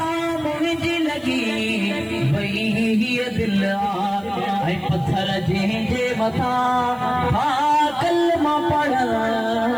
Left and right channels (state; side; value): noise; right; hiss, 28 dB below the sound